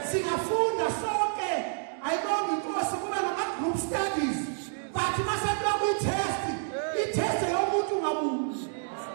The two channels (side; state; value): left; silent; digital silence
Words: Singafunda sonke. Ayibonge inkosi kuba nama-group studies. But masekuya kwi-test, i-test yomuntu ngabunye.